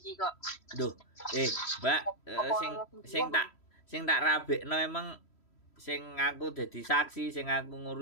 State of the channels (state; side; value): late; right; 3.1 ms